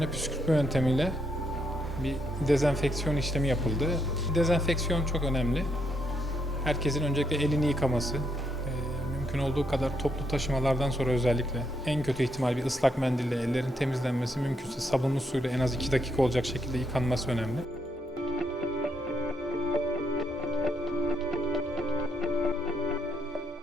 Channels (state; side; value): normal; both; correlation 0.77